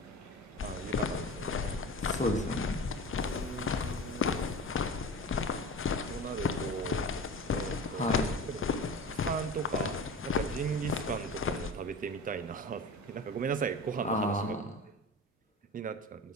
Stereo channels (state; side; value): normal; both; correlation 0.33